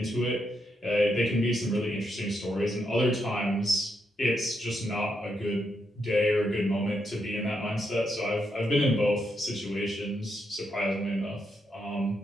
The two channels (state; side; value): normal; both; correlation 0.80